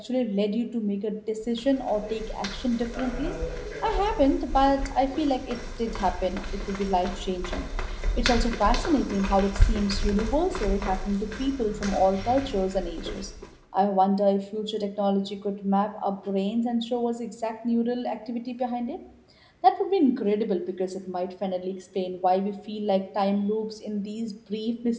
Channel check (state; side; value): identical; both; correlation 1.00